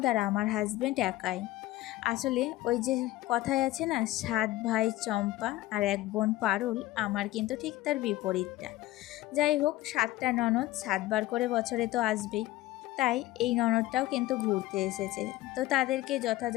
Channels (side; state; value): right; quieter; 16.9 dB